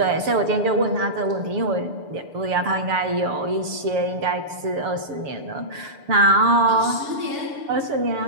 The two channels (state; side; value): late; left; 6.8 ms